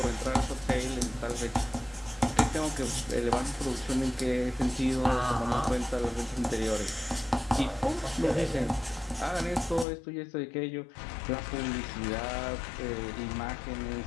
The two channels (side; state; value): right; drops out; at 9.9 s